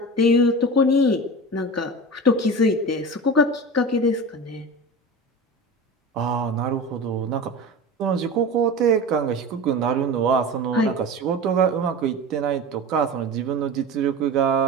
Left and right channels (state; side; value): normal; both; correlation 0.30